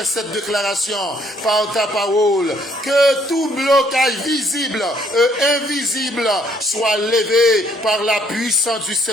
cette déclaration par ta parole. Que tout blocage visible et invisible soit levé par la puissance du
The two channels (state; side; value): normal; both; correlation 0.66